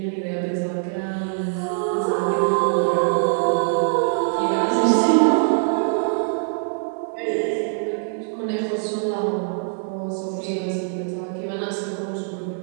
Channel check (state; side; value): silent; left; digital silence